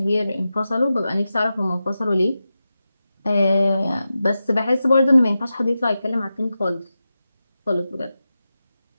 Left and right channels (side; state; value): both; inverted; correlation -0.92